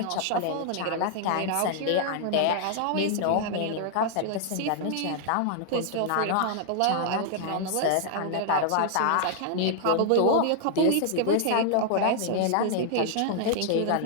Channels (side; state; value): both; different; correlation -0.01